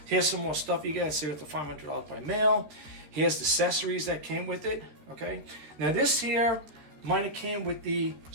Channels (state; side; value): late; left; 13 ms